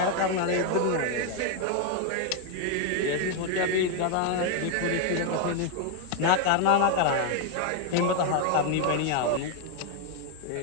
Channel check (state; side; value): different; both; correlation 0.01